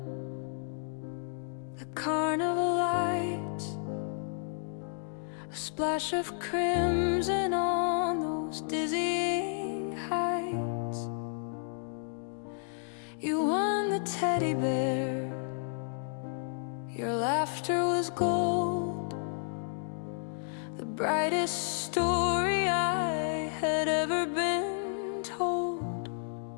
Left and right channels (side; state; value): right; silent; digital silence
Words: the carnival lights, a splash of crimson on those dizzying heights. You won the teddy bear, your laughter was gold, the brightest story I had ever been told.